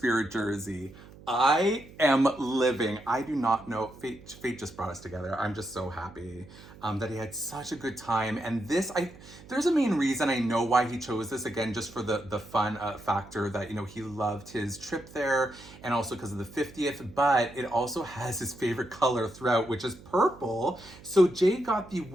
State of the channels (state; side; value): noise; right; hum, 20 dB below the sound